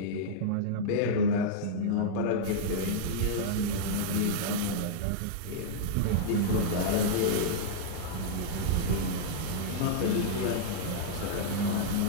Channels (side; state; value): both; different; correlation -0.02